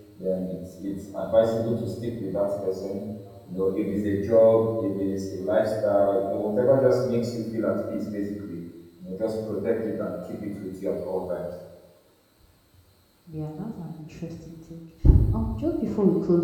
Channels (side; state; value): both; identical; correlation 1.00